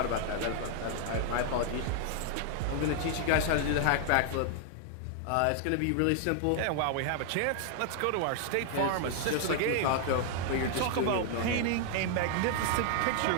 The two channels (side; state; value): both; different; correlation 0.00